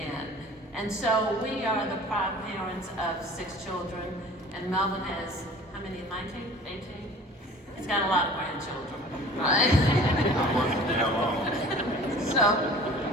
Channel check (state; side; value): normal; both; correlation 0.45